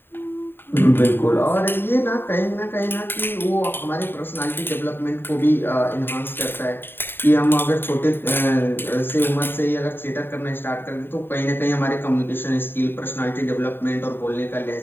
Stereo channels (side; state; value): right; late; 0.10 ms